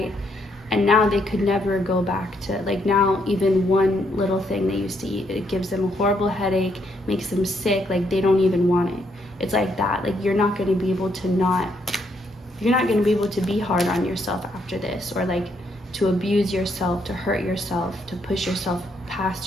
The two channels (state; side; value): normal; both; correlation 0.74